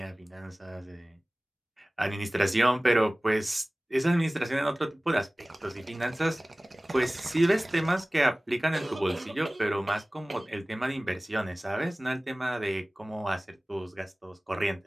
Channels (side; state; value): both; normal; correlation 0.98